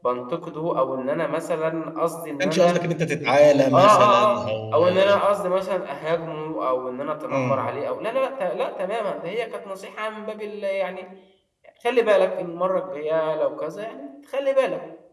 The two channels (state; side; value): identical; both; correlation 1.00